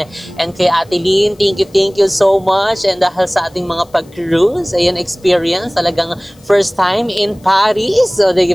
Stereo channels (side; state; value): left; noise; hiss, 30 dB below the sound